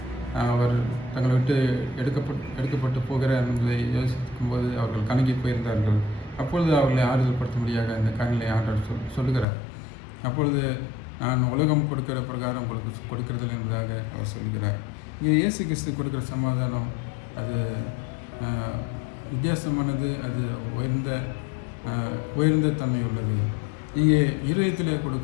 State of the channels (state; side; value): drops out; right; at 9.5 s